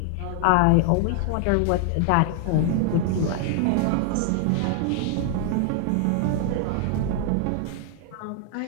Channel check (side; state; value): both; different; correlation 0.00